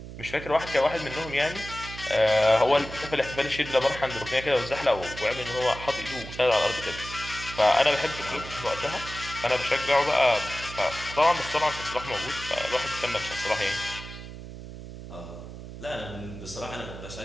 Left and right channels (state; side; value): noise; right; hum, 12 dB below the sound